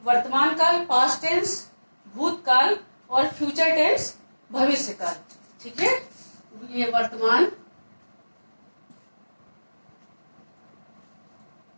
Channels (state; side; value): inverted; both; correlation -1.00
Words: वर्तमान काल, पास्ट टेंस भूतकाल, और फ्यूचर टेंस भविष्य काल। ठीक है, ये वर्तमान,